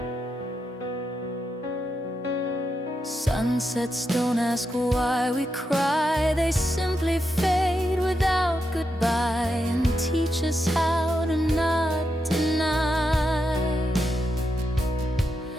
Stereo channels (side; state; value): both; normal; correlation 0.85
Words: Sunsets don't ask why we cry, they simply fade without goodbye, and teach us how to not deny.